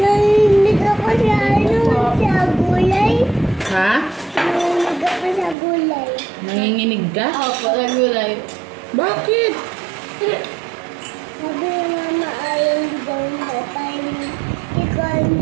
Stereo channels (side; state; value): left; drops out; at 5.6 s